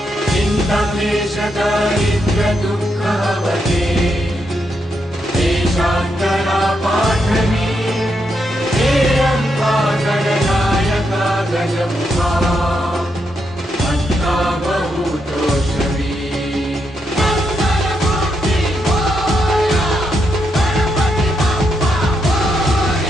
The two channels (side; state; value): both; normal; correlation 0.81